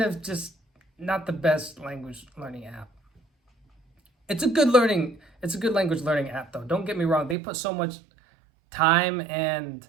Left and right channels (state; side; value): drops out; left; at 7.4 s